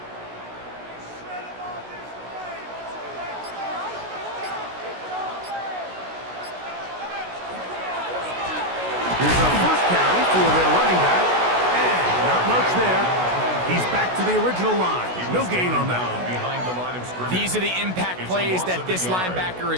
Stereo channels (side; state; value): left; late; 16 ms